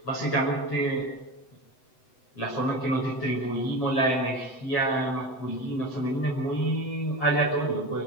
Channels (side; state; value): right; late; 7.9 ms